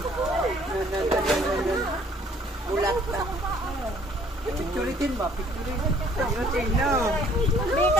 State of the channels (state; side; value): normal; both; correlation 0.59